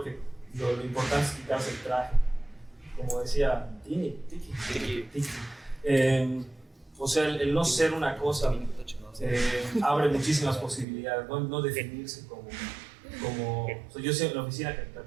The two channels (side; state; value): left; drops out; at 10.9 s